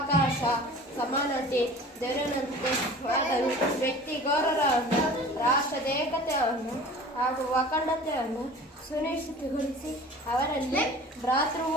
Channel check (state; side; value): normal; both; correlation 0.42